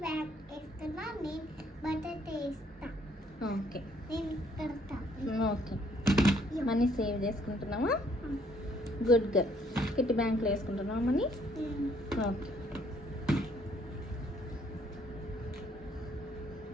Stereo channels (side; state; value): both; normal; correlation 0.66